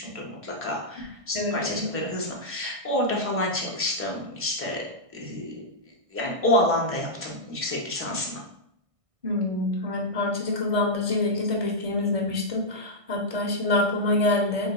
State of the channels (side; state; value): left; late; 1.6 ms